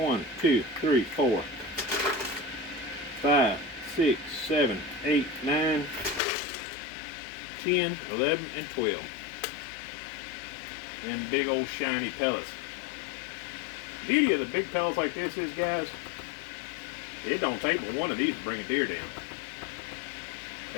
2, 3, 4, 5, 6, 7, 8, 9, 10, 11, and 12. Them big old shiny pellets. The beauty of the big pellets like this is, guys, it don't take but one of these to bring a deer down.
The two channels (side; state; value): right; drops out; at 6.2 s